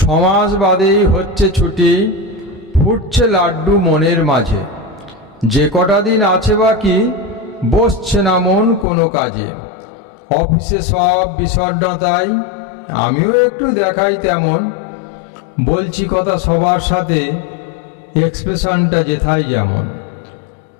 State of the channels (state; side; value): drops out; right; at 8.8 s